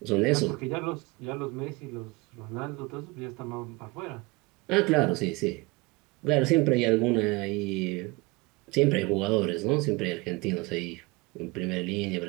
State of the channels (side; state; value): left; quieter; 24.9 dB